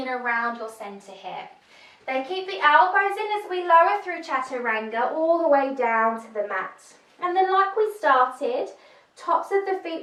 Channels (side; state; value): both; identical; correlation 1.00